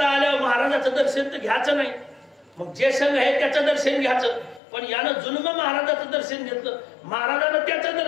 आल्यावर महाराजाचं दर्शन तर घ्यायचं नाही. मग जे संघ आहे त्याचं दर्शन घ्यायचं. पण यानं जुलम महाराजाचं दर्शन घेतलं. महाराजानं त्याचं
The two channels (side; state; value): right; drops out; at 4.6 s